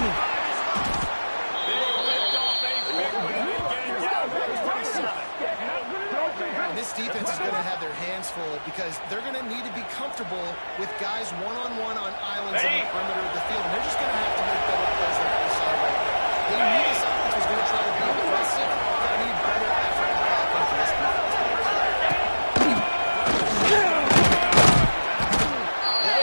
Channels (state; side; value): inverted; both; correlation -1.00